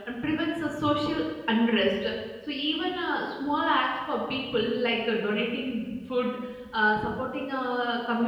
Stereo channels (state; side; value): identical; both; correlation 1.00